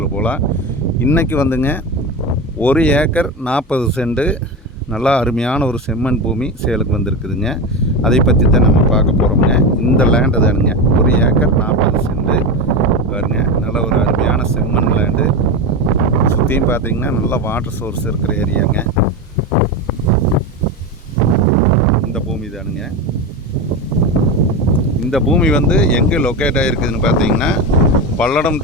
போகலாம். இன்றைக்கி வந்துங்க 1 ஏக்கர் 40 சென்ட் நல்லா அருமையான ஒரு செம்மண் பூமி சேலுக்கு வந்திருக்குதுங்க. அதை பற்றி தான் நம்ம பார்க்க போகிறோம்ங்க. இந்த லேண்டு தானுங்க 1 ஏக்கர் 40 சென்ட் பாருங்க. நல்ல ஒரு அருமையான செம்மண் லேண்டு. சுற்றியும் பார்த்தீங்கன்னா நல்லா வாட்டர் சோர்ஸ் இருக்கிற ஏரியாங்க. இந்த பூமி தானுங்க. இந்த பூமி வந்து எங்கே லொக்கேட் ஆகிருக்குதுன்னு பார்த்தீங்கன்னா பல்லடம்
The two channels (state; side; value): normal; both; correlation 0.19